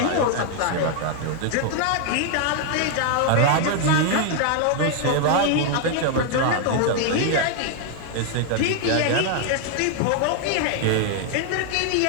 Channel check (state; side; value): different; both; correlation 0.00